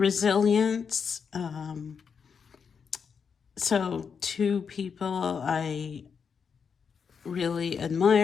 So two people I really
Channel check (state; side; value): quieter; right; 6.3 dB